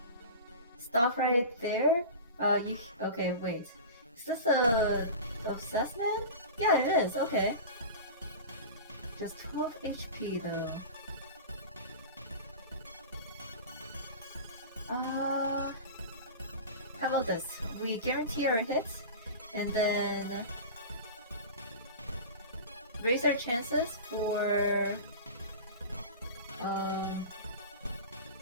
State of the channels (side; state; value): both; inverted; correlation -0.32